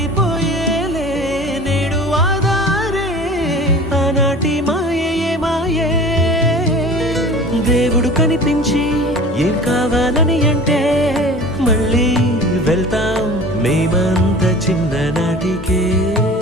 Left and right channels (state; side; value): normal; both; correlation 0.41